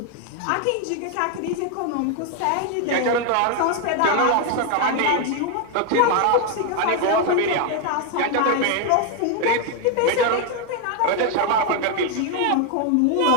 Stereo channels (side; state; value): both; different; correlation 0.01